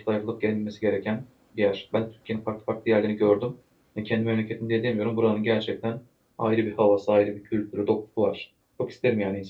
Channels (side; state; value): both; identical; correlation 1.00